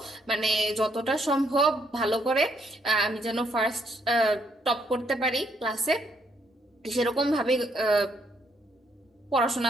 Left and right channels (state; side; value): normal; both; correlation 0.72